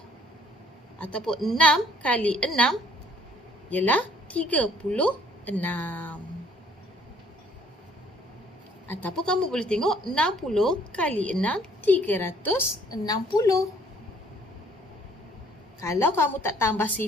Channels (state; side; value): normal; both; correlation 0.60